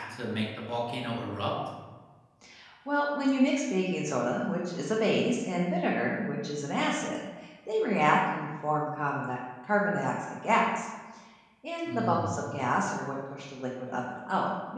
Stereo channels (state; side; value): identical; both; correlation 1.00